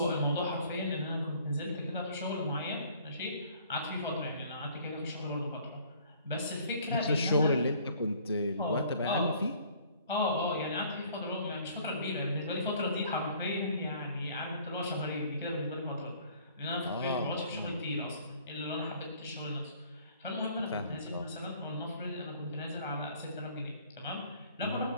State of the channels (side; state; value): both; inverted; correlation -0.56